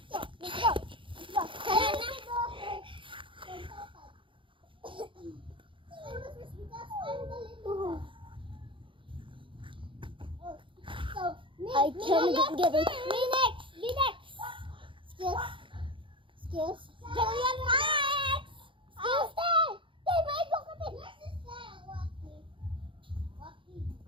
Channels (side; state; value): left; late; 0.25 ms